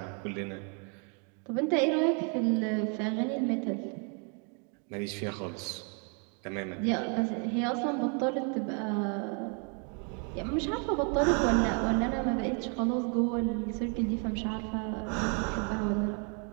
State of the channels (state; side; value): quieter; left; 38.7 dB